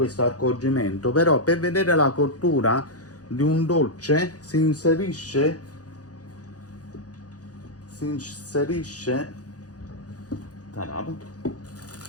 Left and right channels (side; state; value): right; late; 0.67 ms